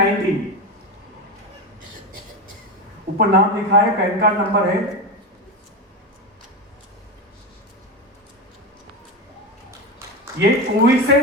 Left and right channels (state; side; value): normal; both; correlation 0.16